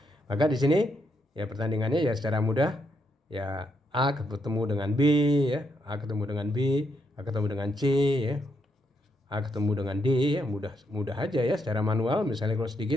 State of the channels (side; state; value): both; normal; correlation 0.79